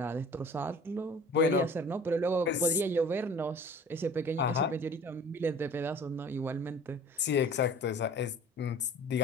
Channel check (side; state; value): both; normal; correlation 0.45